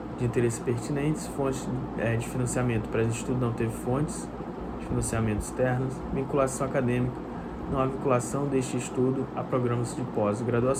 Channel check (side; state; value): both; identical; correlation 1.00